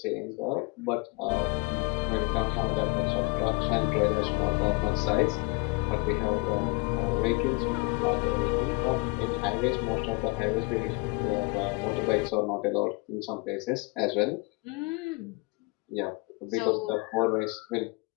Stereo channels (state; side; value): quieter; right; 28.2 dB